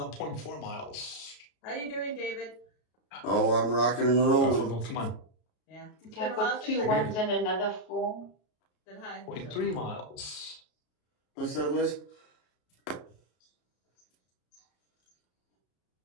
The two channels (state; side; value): late; right; 33 ms